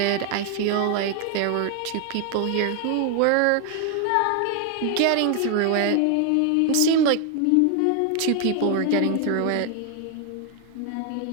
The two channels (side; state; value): both; different; correlation 0.00